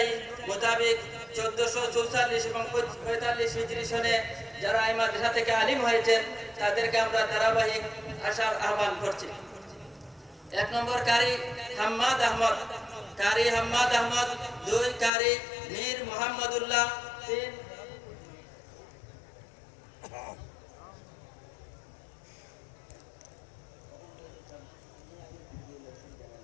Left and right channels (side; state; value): right; drops out; at 15.1 s